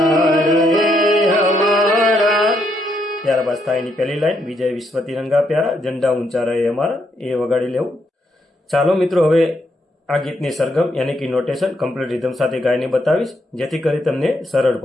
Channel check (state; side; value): normal; both; correlation 0.76